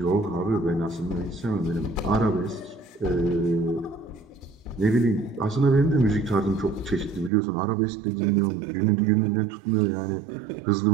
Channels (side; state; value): left; drops out; at 7.3 s